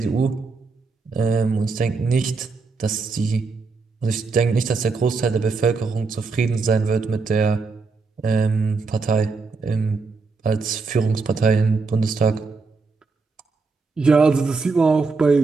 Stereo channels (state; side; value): quieter; left; 4.3 dB